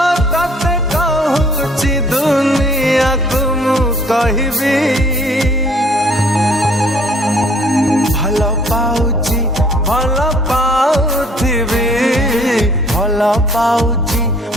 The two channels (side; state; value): both; normal; correlation 0.59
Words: तते कहूची दुनिया को मु कहबी भल पाउची भल पाउथिबी भल पाउची